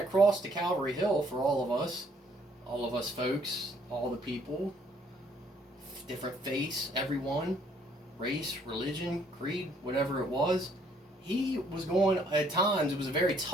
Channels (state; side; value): normal; both; correlation 0.65